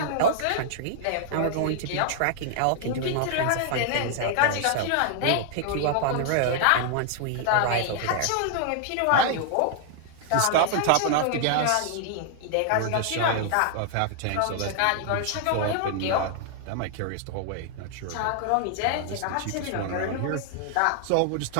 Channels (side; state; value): both; different; correlation 0.00